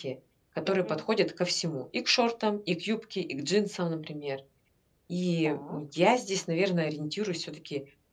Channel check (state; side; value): identical; both; correlation 1.00